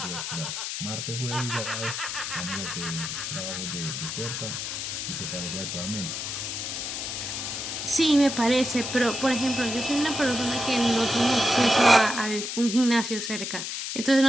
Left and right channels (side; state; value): left; noise; hiss, 4 dB below the sound